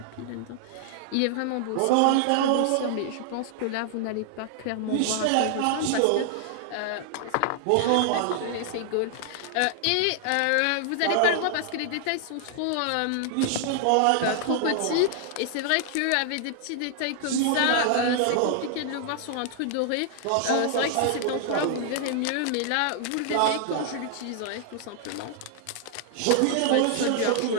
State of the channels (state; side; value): different; both; correlation 0.00